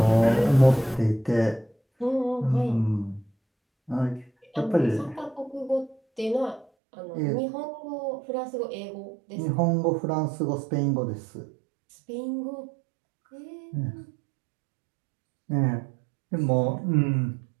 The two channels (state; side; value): drops out; left; at 6.7 s